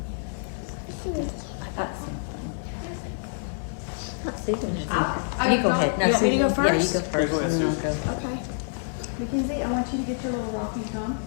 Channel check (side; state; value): right; silent; digital silence